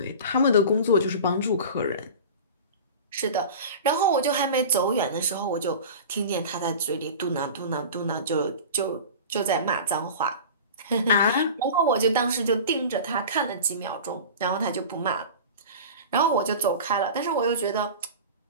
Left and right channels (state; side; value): inverted; both; correlation -0.34